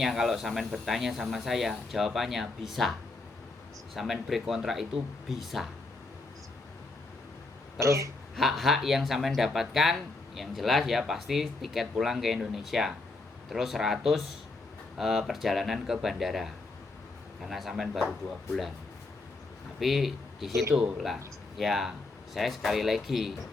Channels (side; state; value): right; quieter; 3.3 dB